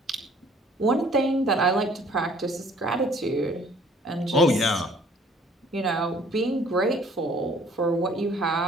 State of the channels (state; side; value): normal; both; correlation 0.56